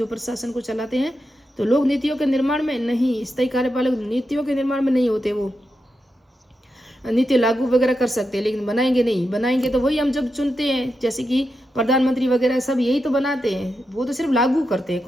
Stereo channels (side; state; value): both; normal; correlation 0.87